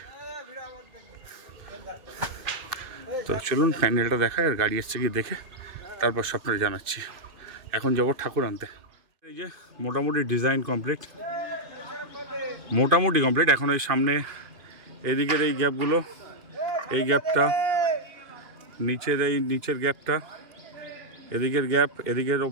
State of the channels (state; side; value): late; left; 2.6 ms